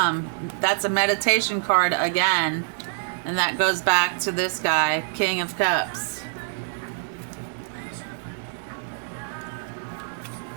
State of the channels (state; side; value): silent; left; 62 dB below the other